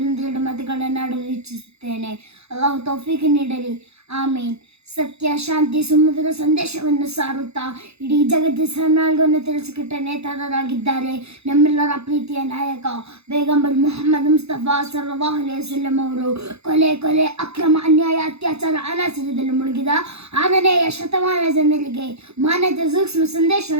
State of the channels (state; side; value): late; left; 0.79 ms